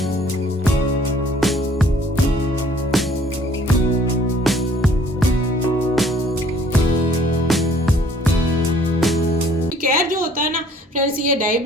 केयर जो होता है ना फ्रेंड्स, ये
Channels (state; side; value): normal; both; correlation 0.57